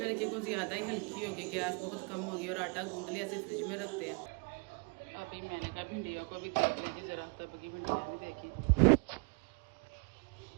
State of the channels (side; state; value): left; quieter; 32.7 dB